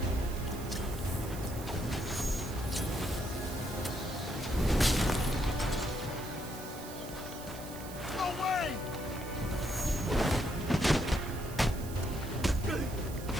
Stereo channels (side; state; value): right; noise; hiss, 14 dB below the sound